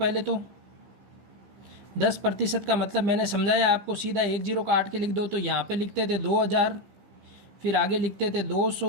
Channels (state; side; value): late; left; 15 ms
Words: तो 10% का मतलब मैंने समझाया आपको, सीधा 1 जीरो काट के लिख दो। तो यहाँ पे लिखते थे 2,000, फिर आगे लिखते थे